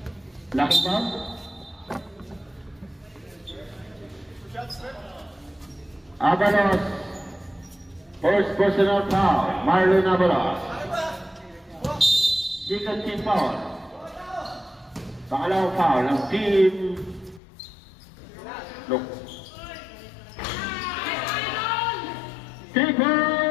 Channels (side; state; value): right; drops out; at 17.4 s